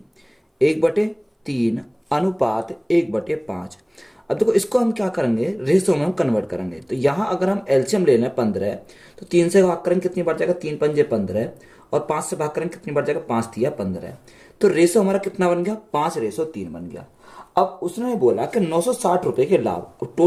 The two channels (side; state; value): both; identical; correlation 1.00